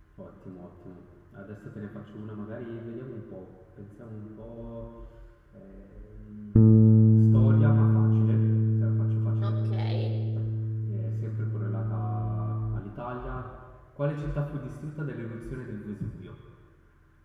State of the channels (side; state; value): both; identical; correlation 1.00